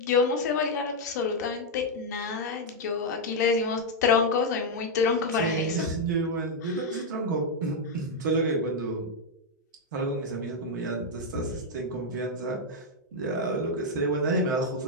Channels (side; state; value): both; normal; correlation -0.01